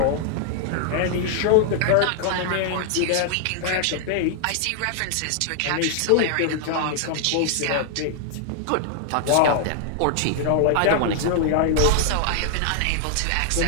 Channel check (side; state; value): both; different; correlation 0.00